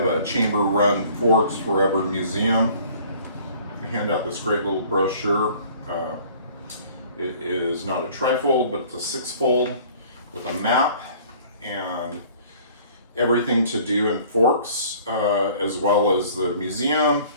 a chamber-run Forks Forever museum. They hand out this great little brochure. It is not a trifold, but it's a six-fold with a map and everything to do in Forks, as well as the museum.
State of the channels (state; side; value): inverted; both; correlation -0.52